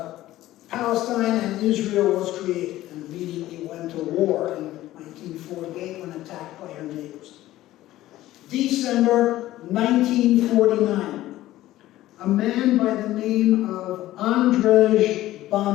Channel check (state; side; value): quieter; right; 15.2 dB